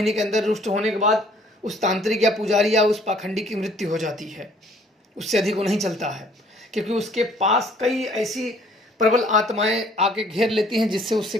के अंदर रुष्ट होने के बाद उस तांत्रिक या पुजारी या उस पाखंडी की मृत्यु हो जाती है। उससे अधिक वो नहीं चलता है, क्योंकि उसके पास कई ऐसी प्रबल आत्माएं आके घेर लेती हैं जिससे उससे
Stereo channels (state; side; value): normal; both; correlation 0.59